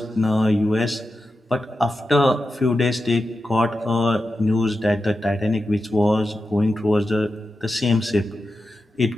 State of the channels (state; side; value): normal; both; correlation 0.90